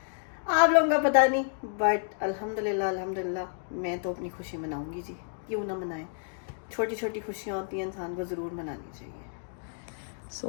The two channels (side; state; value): right; silent; digital silence